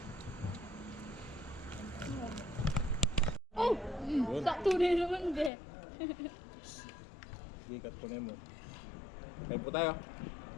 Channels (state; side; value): drops out; right; at 5.5 s